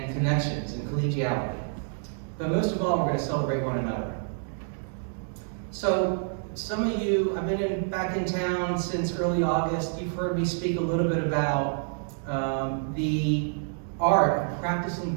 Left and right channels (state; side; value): silent; left; digital silence